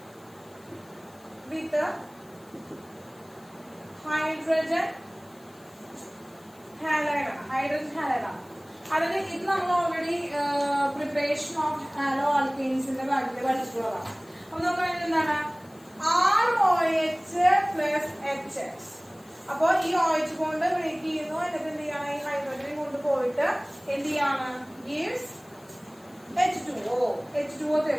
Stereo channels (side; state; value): left; noise; hiss, 27 dB below the sound